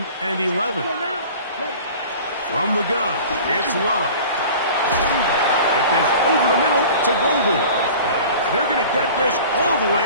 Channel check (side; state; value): both; inverted; correlation -0.41